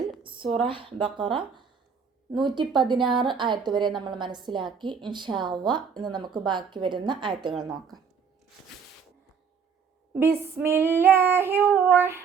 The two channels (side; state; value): left; quieter; 6.2 dB